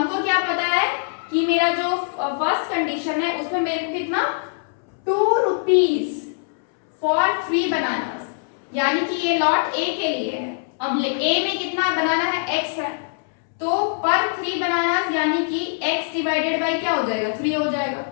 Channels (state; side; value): silent; right; 64 dB below the other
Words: क्या पता है कि मेरा जो फर्स्ट कंडीशन है उसमें मेरे को कितना 2 रुपीज फॉर 3 बनानास यानी कि ये लॉट ए के लिए है. अब ए में कितना बनाना है x है तो पर 3 बनानास यानी कि x डिवाइडेड बाई क्या हो जाएगा 3 हो जाएगा